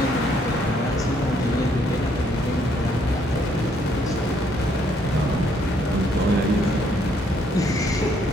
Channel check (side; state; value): both; normal; correlation 0.69